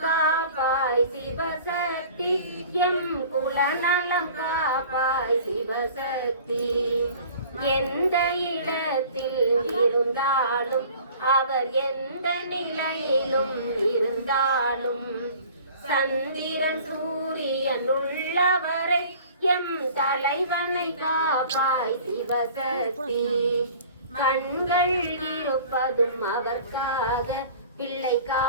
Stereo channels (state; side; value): inverted; both; correlation -0.46